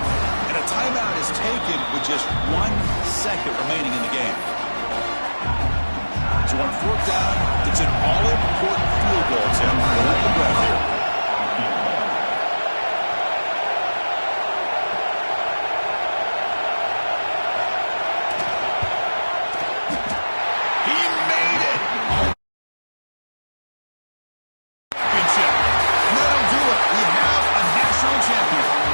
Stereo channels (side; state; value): both; inverted; correlation -1.00